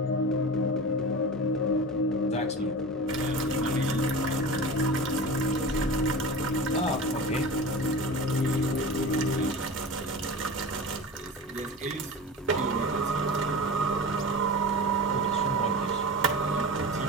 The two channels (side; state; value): both; normal; correlation 0.31